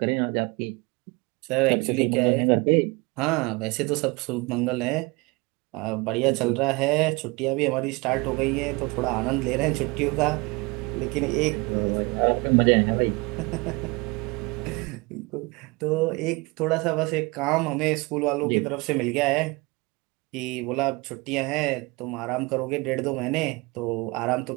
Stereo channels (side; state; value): left; quieter; 25.8 dB